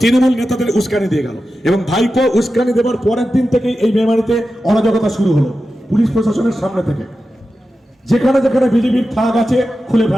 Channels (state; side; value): normal; both; correlation 0.92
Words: তৃণমূল নেতাদের উস্কানি দিয়ে গেল, এবং ভাইপো উস্কানি দেবার পরের দিন থেকেই এই মেমারিতে অরাজকতা শুরু হলো পুলিশ প্রশাসনের সামনে থেকে। যেখানে যেখানে বিজেপির ফ্ল্যাগ আছে খুলে